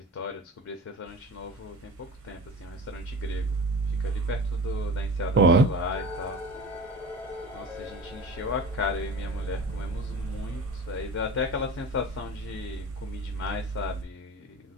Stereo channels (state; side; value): normal; both; correlation 0.34